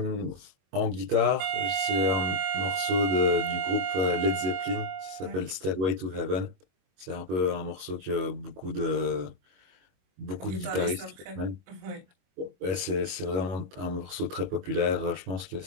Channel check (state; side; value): late; left; 22 ms